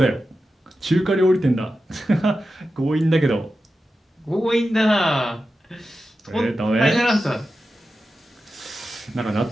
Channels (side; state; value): both; normal; correlation 0.91